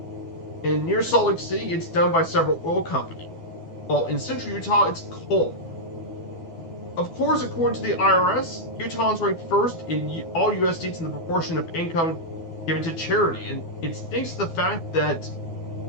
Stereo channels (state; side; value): late; right; 12 ms